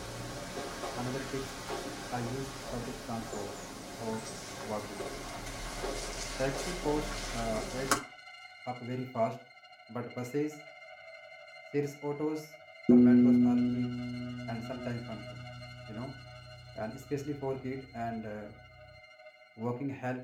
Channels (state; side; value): identical; both; correlation 1.00